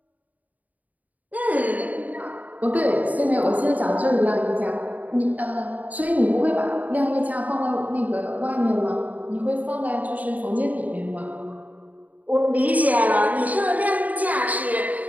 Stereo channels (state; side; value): late; left; 0.076 ms